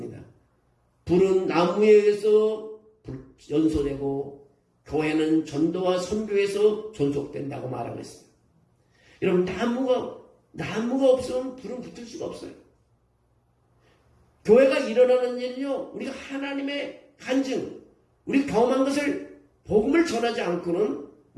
불은 나무에 의해서 연소되고 교회는 전도와 선교에서 존속된다고 말하고 있습니다. 여러분, 나무가 없으면 불은 붙을 수가 없어요. 교회가 일어나는 일은요, 우리가 하나님의 간증, 우리 경험한 것을 복음을 전하지 않고는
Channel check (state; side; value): identical; both; correlation 1.00